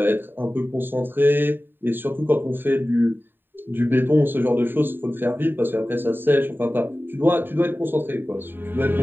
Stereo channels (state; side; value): late; left; 0.096 ms